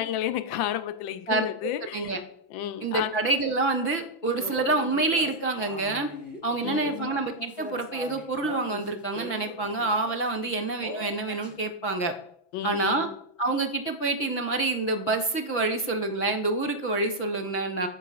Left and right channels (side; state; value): right; late; 6.0 ms